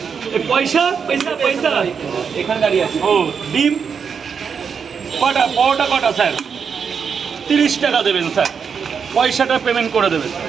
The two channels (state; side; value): quieter; left; 6.5 dB